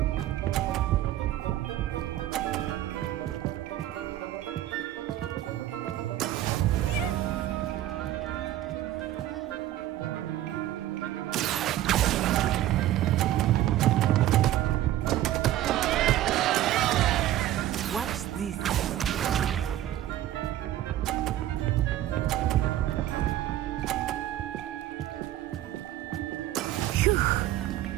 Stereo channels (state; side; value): quieter; left; 13.4 dB